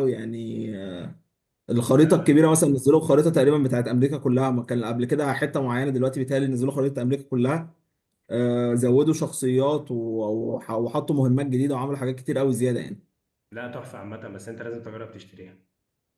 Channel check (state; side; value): identical; both; correlation 1.00